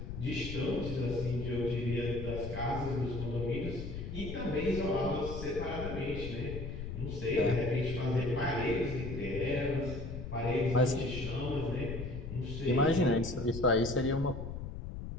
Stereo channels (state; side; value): noise; left; rumble, 7 dB below the sound